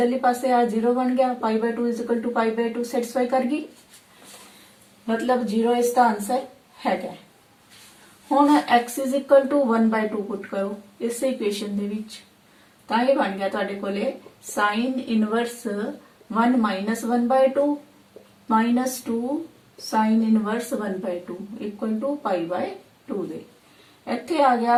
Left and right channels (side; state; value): both; identical; correlation 1.00